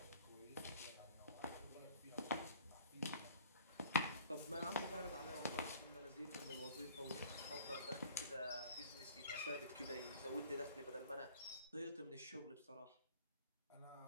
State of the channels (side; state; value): both; inverted; correlation -0.51